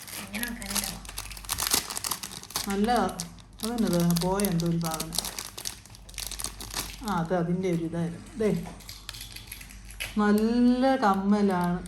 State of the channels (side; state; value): both; identical; correlation 1.00